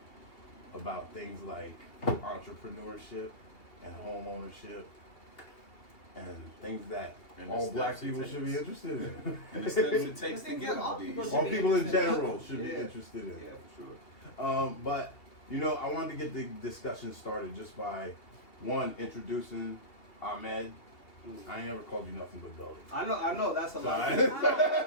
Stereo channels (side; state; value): right; late; 2.8 ms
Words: about things like entrepreneurship and home ownership and things that all black people should be interested in. And the steps it takes to get all these. All people in general should be interested in. Yeah, for sure. But, you know, I wanted to get the discussion started just by, one, introducing Ahmed. I ain't ever called you nothing but Billy. I know, that's a lot. I Of could